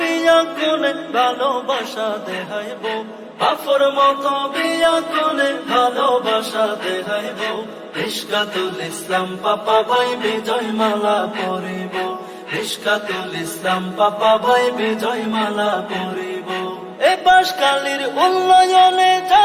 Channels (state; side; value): identical; both; correlation 1.00